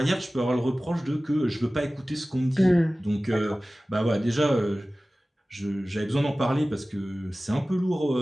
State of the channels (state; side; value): normal; both; correlation 0.97